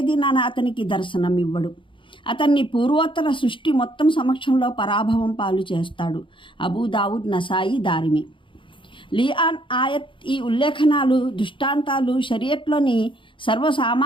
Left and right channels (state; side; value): late; right; 0.24 ms